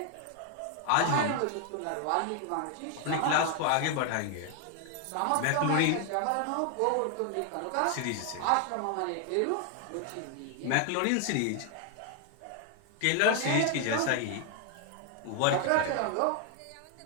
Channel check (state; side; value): different; both; correlation 0.00